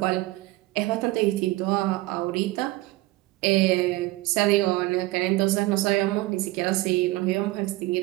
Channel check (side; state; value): left; quieter; 19.2 dB